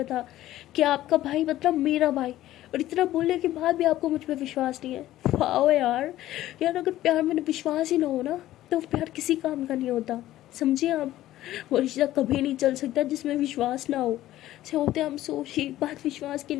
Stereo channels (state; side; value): quieter; right; 14.5 dB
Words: था कि आपका भाई मतलब मेरा भाई, और इतना बोलने के बाद भी आपको मुझ पर विश्वास नहीं है। वाह यार, यार अगर प्यार में विश्वास ही ना हो ना तो प्यार किसी काम का नहीं होता, समझिए आप। वो रिश्ता कभी नहीं चल सकता जिसमें विश्वास ना हो। से होते हम सोची बात विश्वास की